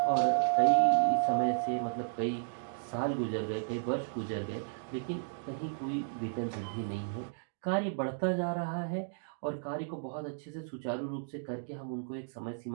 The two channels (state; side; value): silent; left; digital silence